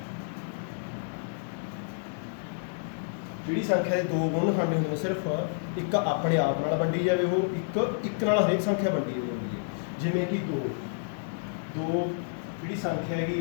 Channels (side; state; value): right; silent; digital silence